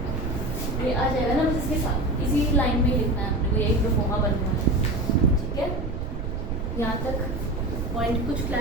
ये आ जाएगा ना, बस इसके साथ इसी लाइन में ही लिखना है अपने को, यही प्रोफोमा बनना है ठीक है। यहाँ तक पॉइंट कुछ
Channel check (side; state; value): right; noise; rumble, 3 dB below the sound